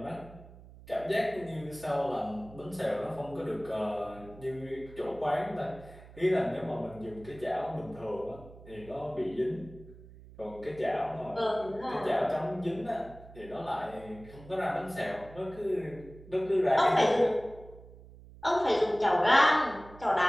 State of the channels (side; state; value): right; noise; hum, 19 dB below the sound